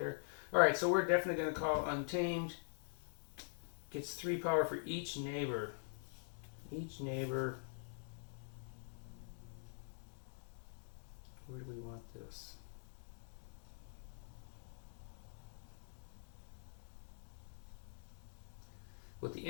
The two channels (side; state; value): right; silent; digital silence